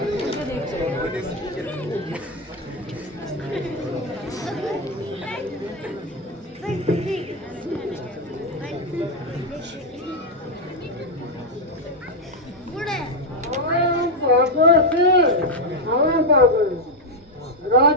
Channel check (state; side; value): normal; both; correlation 0.04